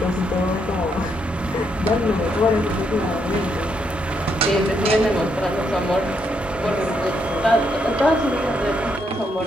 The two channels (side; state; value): both; normal; correlation 0.77